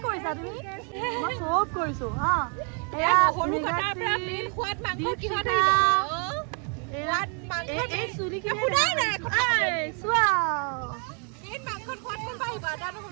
কৰিছা তুমি মই চব কৰিছো হা এয়া এই চুলি কি চোৱা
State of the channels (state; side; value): quieter; left; 38.6 dB